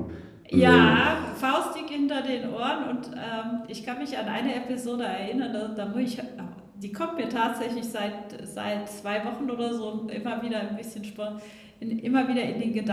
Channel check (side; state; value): both; identical; correlation 1.00